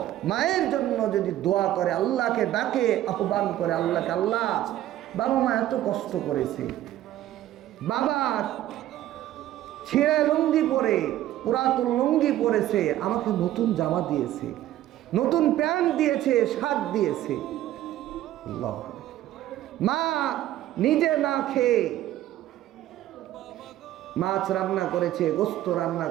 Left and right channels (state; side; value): quieter; left; 13.6 dB